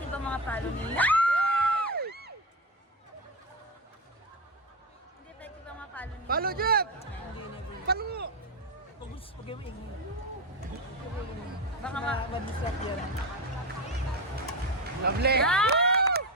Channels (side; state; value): both; normal; correlation 0.14